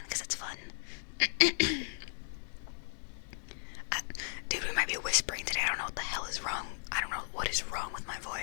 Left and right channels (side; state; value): right; silent; 54 dB below the other